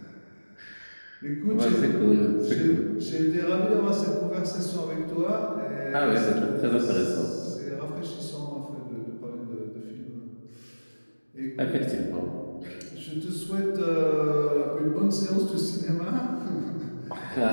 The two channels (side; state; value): both; inverted; correlation -1.00